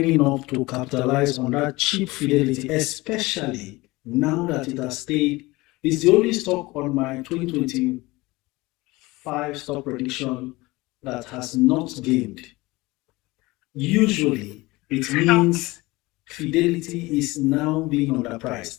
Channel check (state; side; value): quieter; right; 21.4 dB